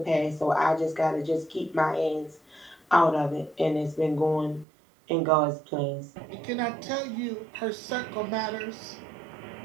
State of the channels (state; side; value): drops out; left; at 4.7 s